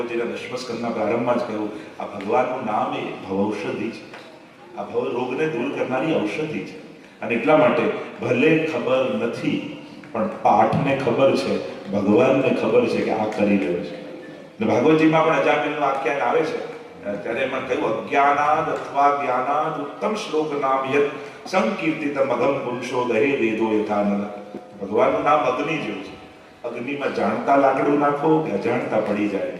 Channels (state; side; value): identical; both; correlation 1.00